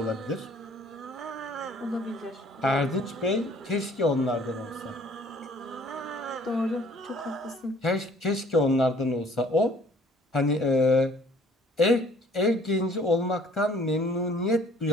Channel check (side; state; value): both; normal; correlation 0.56